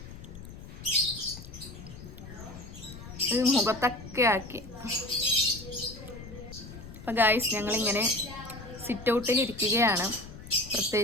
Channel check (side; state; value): left; noise; rumble, 14 dB below the sound